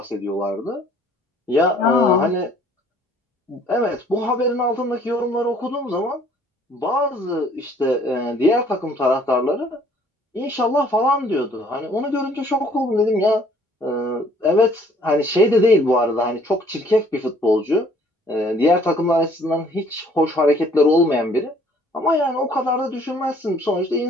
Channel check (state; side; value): normal; both; correlation 0.59